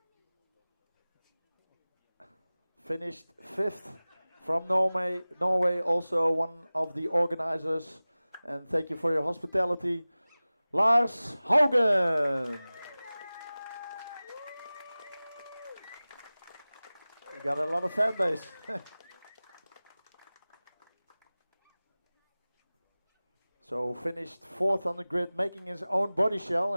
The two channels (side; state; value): both; inverted; correlation -0.98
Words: Finished 5th from Norway, also one of the organizers. And thank you for your hospitality, Lars Haugen. You got a lot of fan base. So finished 4th on the grid, making his own body shell